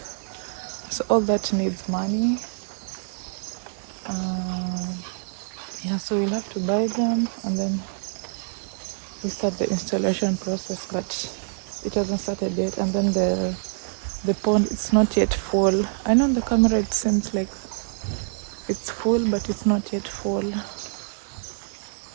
so all that needs money. Yeah, so we'll have to buy them and then we start the installation process, but it hasn't started yet. And then the pond, it's not yet full. I know on the camera it seems like it's full, but it's not yet full.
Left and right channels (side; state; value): left; silent; 61 dB below the other